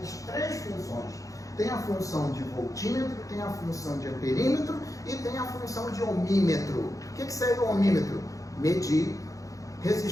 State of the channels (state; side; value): late; right; 0.16 ms